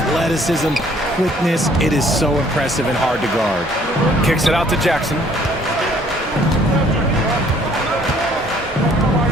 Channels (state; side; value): normal; both; correlation 0.60